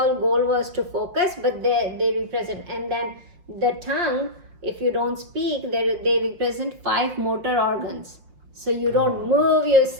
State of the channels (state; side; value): late; left; 5.6 ms